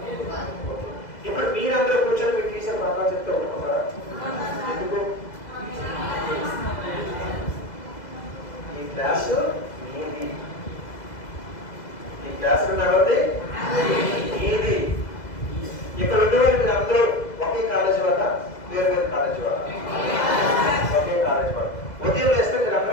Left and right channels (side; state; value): right; late; 2.0 ms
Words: ఇప్పుడు మీరందరూ కూర్చొని మీ టీచర్ పాఠాలు చెప్తే ఒప్పుకుంటారా? ఎందుకు? ఈ క్లాసు మీది, ఈ క్లాసు ఎవరిది? మీది. ఇక్కడ ఉండేవాళ్ళు మీరు అందరూ ఒకే కాలేజీ వల్ల, వేరు వేరు కాలేజీ వల్ల? ఒకే కాలేజీ వల్ల. ఉదయం వేస్తే మీరు